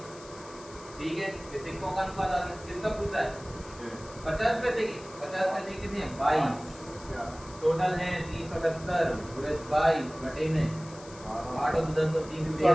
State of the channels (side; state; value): left; noise; hiss, 19 dB below the sound